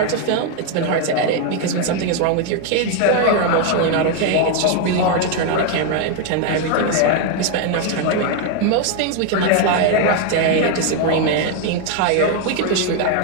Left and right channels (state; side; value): different; both; correlation 0.01